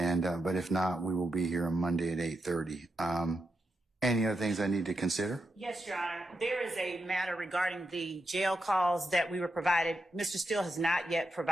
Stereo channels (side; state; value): both; normal; correlation 0.86